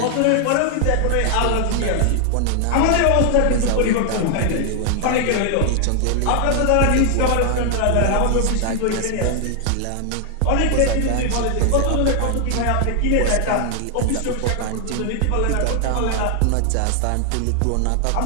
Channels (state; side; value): different; both; correlation 0.00